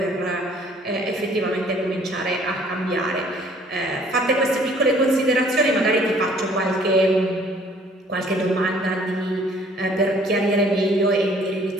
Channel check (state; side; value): normal; both; correlation 0.58